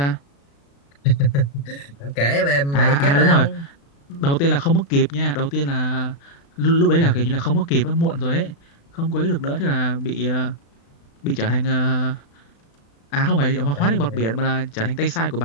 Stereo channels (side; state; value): right; late; 36 ms